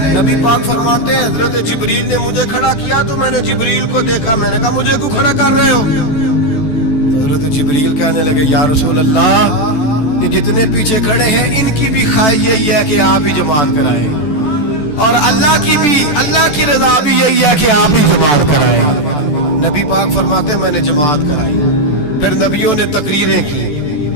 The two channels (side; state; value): right; late; 14 ms